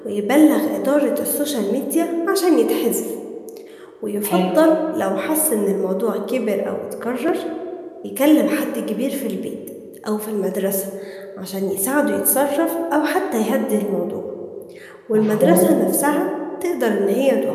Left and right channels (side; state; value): both; identical; correlation 1.00